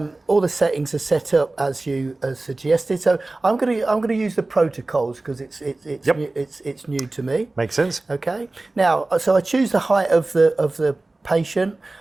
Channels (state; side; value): quieter; left; 3.1 dB